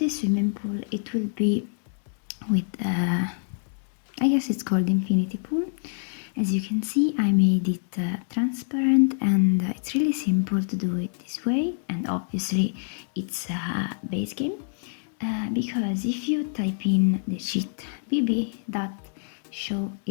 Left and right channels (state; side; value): silent; right; digital silence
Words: swimming pool, it will be with I guess it's called infinity pool. As you can see, I made it transparent, and it's really simple to do it this way. And obviously it's a base game, because if you type in the cheat